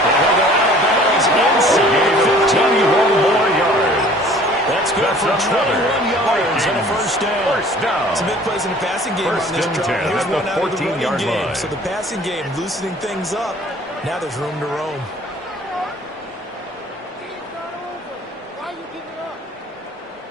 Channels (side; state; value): both; normal; correlation 0.50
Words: go out of bounds inside 15 more yards. That's good for 21 yards and a first down. First down. Some big plays in the passing game First on this and drive. 10 Here's at the one out of the 14-yard running game. line. So the passing game loosening things up. Now there's room to roam.